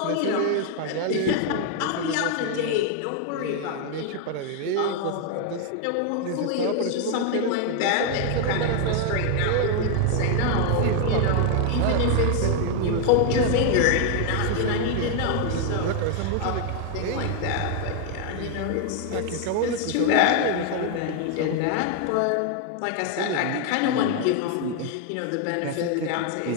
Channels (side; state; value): both; different; correlation 0.00